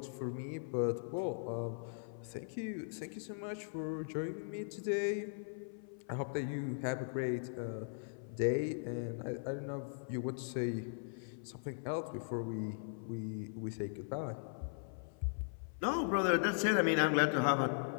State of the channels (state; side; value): silent; right; 52 dB below the other